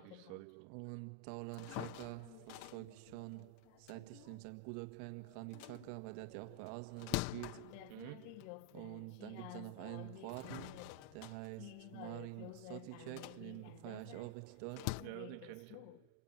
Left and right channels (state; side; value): different; both; correlation 0.01